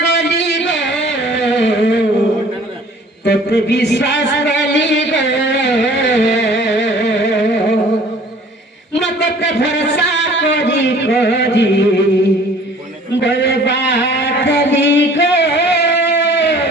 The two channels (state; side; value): normal; both; correlation 0.52